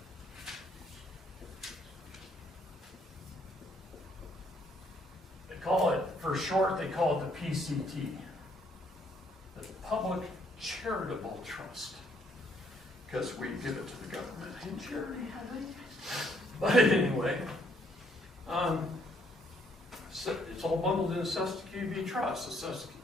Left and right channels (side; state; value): both; normal; correlation 0.68